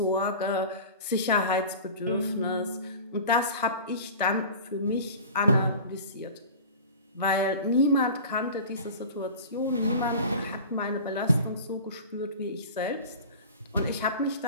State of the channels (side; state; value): both; inverted; correlation -0.37